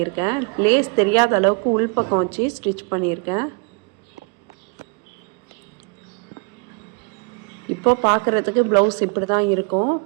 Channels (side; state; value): left; quieter; 36.3 dB